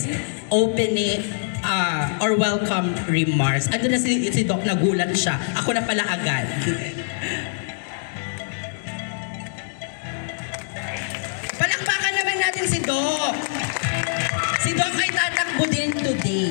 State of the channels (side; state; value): right; silent; digital silence